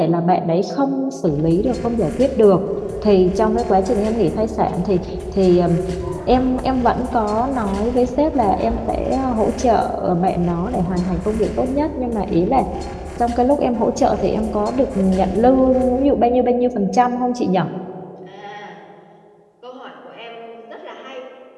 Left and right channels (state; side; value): identical; both; correlation 1.00